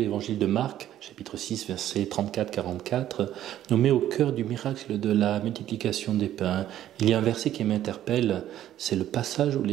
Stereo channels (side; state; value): left; quieter; 12.1 dB